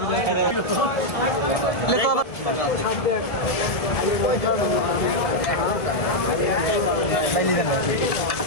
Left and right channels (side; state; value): right; late; 1.7 ms